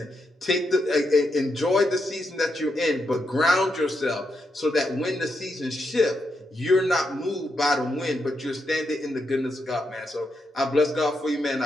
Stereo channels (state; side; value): normal; both; correlation 0.83